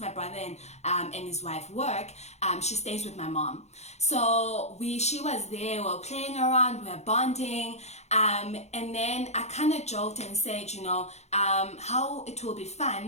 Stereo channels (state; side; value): late; right; 0.32 ms